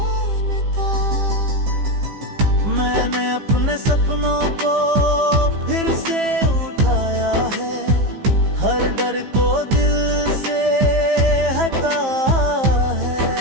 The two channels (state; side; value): late; left; 15 ms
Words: मैंने अपने सपनों को फिर से उठाया है, हर डर को दिल से हटा